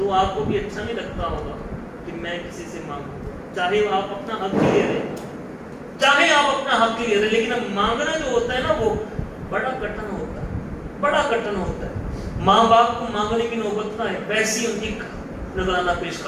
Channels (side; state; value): both; identical; correlation 1.00